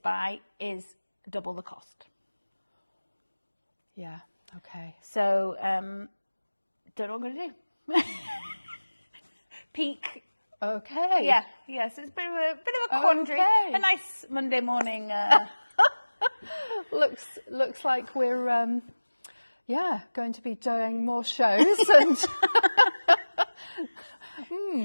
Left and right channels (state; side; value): inverted; both; correlation -1.00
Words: is double the cost. Yeah. Okay. So don't know what I'm going to do. Peak. Okay. Yeah. Yes. It's a bit of a quandary. Okay. A nice Monday morning. Looks like we're going to be doing more shows and.